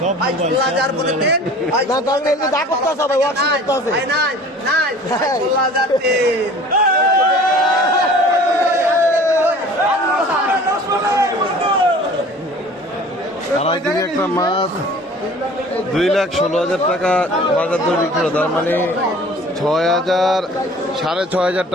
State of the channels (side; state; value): both; normal; correlation 0.46